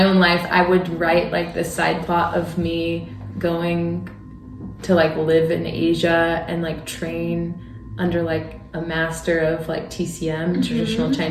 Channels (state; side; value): identical; both; correlation 1.00